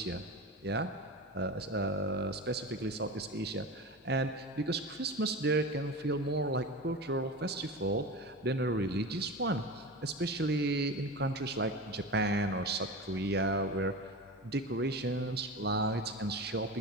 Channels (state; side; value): normal; both; correlation 0.28